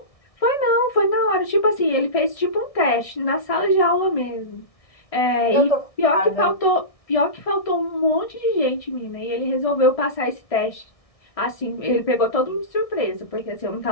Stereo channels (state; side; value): late; right; 1.6 ms